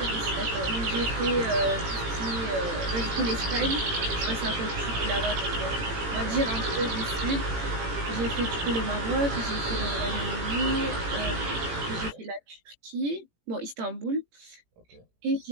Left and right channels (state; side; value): late; left; 18 ms